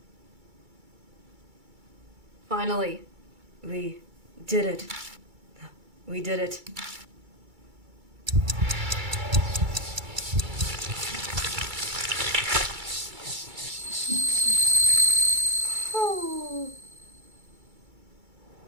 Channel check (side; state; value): left; late; 2.3 ms